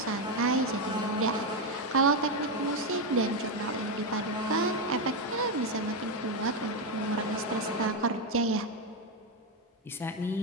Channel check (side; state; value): both; normal; correlation 0.07